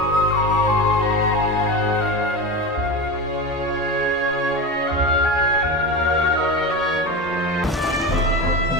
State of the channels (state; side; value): normal; both; correlation 0.24